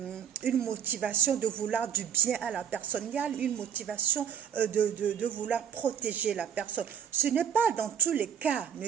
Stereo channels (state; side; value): quieter; left; 8.2 dB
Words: motivation de vouloir du bien à la personne, il y a une motivation de vouloir protéger la personne. Ce n'est pas dans tous les cas,